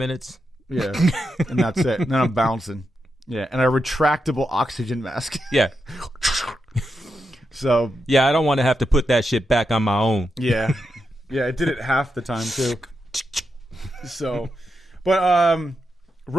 Yeah, and that's it. And then I'm bouncing. Yeah, and a retractable oxygen mask. Yeah. So. Yeah, I don't want to have to put that shit back on my own. Yeah. Yeah, it did it half the time, too. So, but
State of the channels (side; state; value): both; normal; correlation 0.86